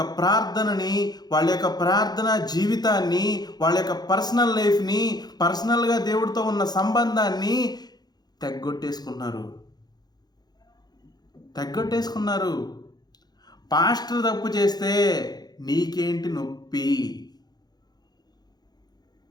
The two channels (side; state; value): right; late; 0.19 ms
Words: ప్రార్థనని, వాళ్ళ యొక్క ప్రార్థన జీవితాన్ని, వాళ్ళ యొక్క పర్సనల్ లైఫ్ని, పర్సనల్గా దేవుడితో ఉన్న సంబంధాన్ని తెగ్గొట్టేసుకున్నారు. పాస్టర్ తప్పు చేస్తే నీకేంటి నొప్పి,